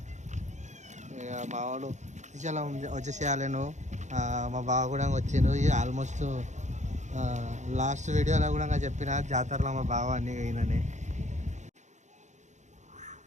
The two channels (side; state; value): left; late; 0.34 ms